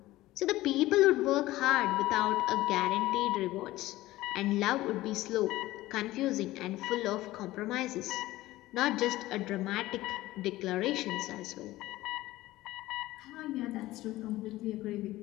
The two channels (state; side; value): quieter; right; 17.1 dB